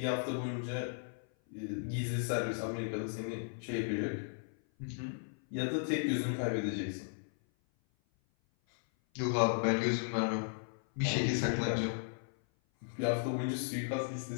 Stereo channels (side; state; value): right; silent; 54 dB below the other